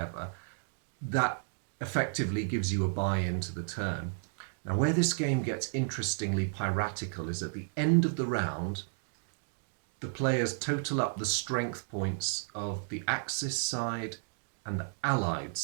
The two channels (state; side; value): silent; left; digital silence